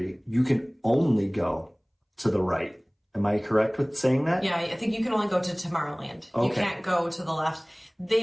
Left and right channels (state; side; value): identical; both; correlation 1.00